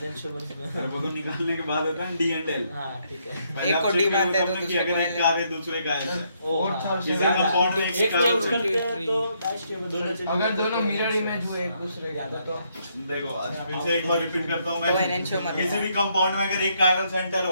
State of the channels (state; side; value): inverted; both; correlation -0.73